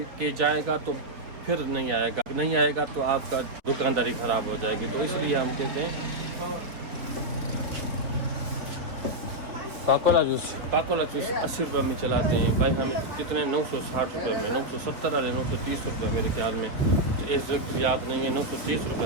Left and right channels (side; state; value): left; late; 3.8 ms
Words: के जाएगा तो फिर नहीं आएगा तो आपका दुकानदारी ख़राब हो जाएगी। तो इसलिए हम कहते हैं पाकोला जूस 80 रुपये में चलाते हैं भाई। हमें कितने 960 रुपये में, 970 वाले 930 रुपये मेरे ख्याल में, इस वक्त याद नहीं है, 930